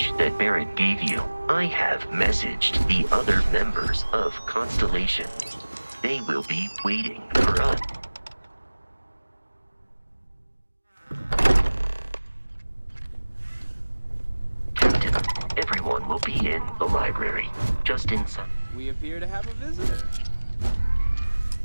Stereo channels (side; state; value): both; inverted; correlation -1.00